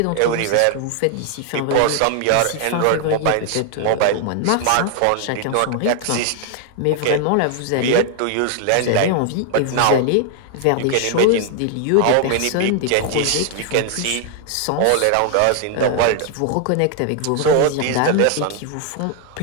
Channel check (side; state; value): both; different; correlation 0.00